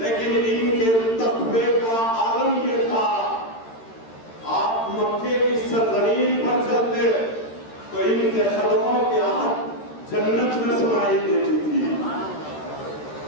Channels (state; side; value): late; right; 13 ms